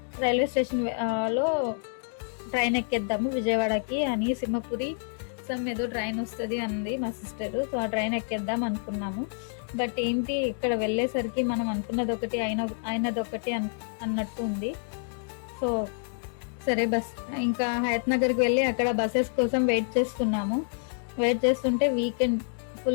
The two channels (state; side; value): silent; right; digital silence